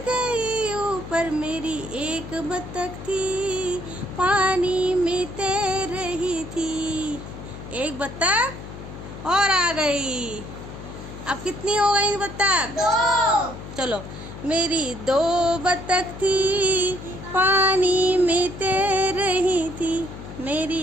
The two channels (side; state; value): left; noise; hum, 12 dB below the sound